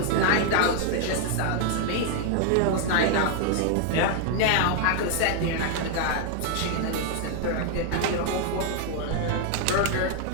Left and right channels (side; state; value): both; different; correlation 0.00